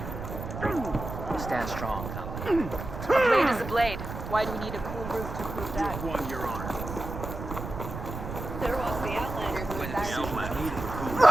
I'll stand strong. A blade is a blade. Why do we need a cool roof to prove that? Won your honor. there was the Outlander who was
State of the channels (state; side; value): noise; right; rumble, 8 dB below the sound